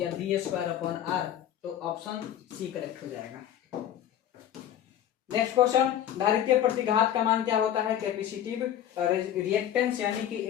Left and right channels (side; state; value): right; quieter; 10.8 dB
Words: V²/R। तो ऑप्शन सी करेक्ट हो जाएगा। नेक्स्ट क्वेश्चन, धारित्रीय प्रतिघात का मान क्या होता है? कैपेसिटिव रिएक्टेंस यानी कि